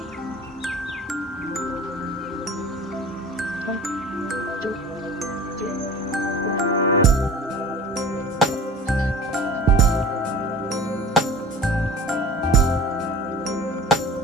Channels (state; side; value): normal; both; correlation 0.40